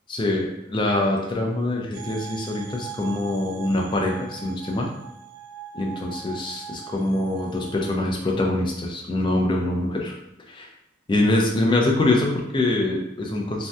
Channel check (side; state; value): both; normal; correlation 0.67